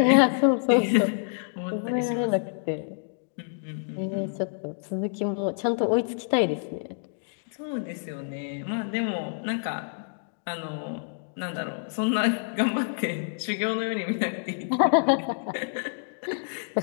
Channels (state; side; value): silent; right; digital silence